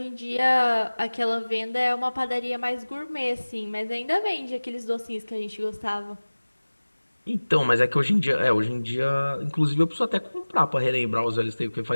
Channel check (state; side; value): inverted; both; correlation -1.00